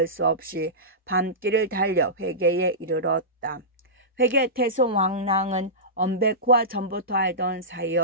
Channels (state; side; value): normal; both; correlation -0.18